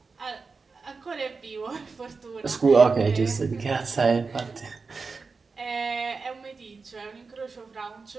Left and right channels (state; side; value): quieter; left; 4.5 dB